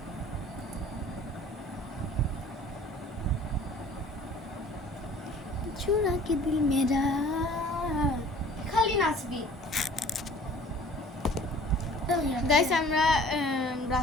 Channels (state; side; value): normal; both; correlation 0.49